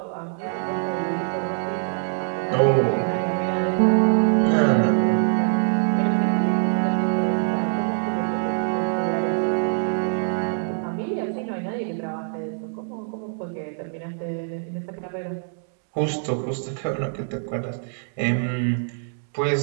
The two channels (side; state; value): left; silent; digital silence